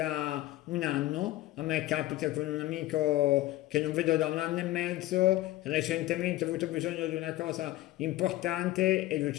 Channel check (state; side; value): quieter; right; 16.3 dB